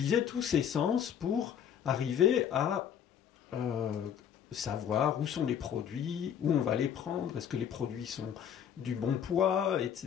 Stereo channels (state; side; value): quieter; right; 8.7 dB